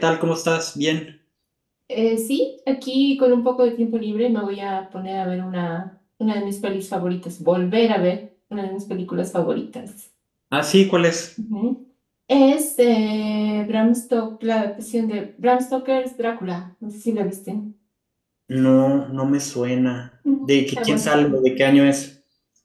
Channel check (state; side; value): identical; both; correlation 1.00